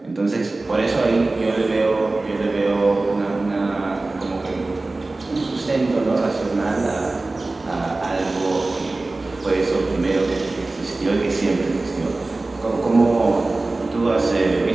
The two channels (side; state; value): left; quieter; 3.2 dB